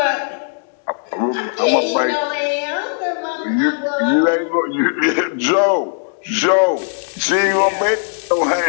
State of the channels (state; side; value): silent; right; digital silence